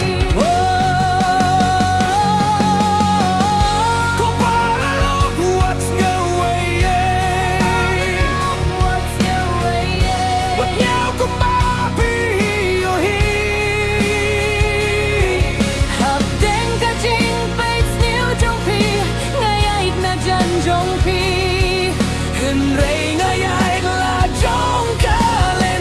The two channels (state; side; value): identical; both; correlation 1.00